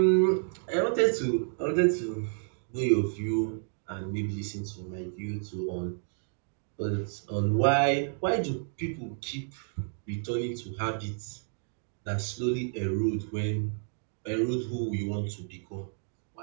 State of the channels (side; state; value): left; silent; digital silence